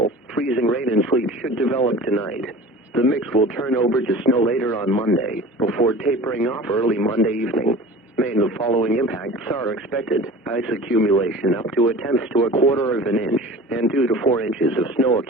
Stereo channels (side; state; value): both; normal; correlation 0.40